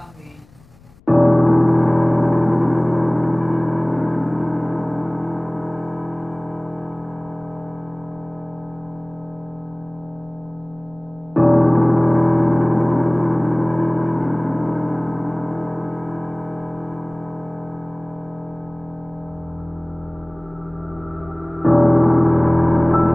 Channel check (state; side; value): noise; left; rumble, 27 dB below the sound